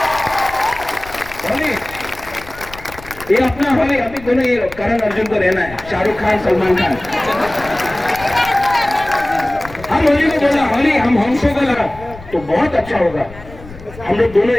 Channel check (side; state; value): left; noise; rumble, 18 dB below the sound